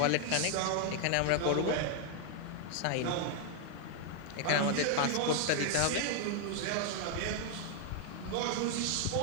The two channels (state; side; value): different; both; correlation 0.00